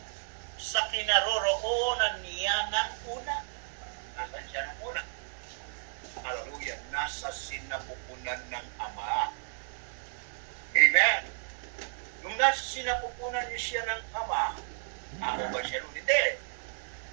sa kinaroroonan niya ng una? Nasaan siya ng una? Hallelujah. Nasa sinapupunan ng Ama. Amen. Nung nasa sinapupunan niya siya ng Ama, ako ba siya nun? Hindi.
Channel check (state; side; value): silent; left; 56 dB below the other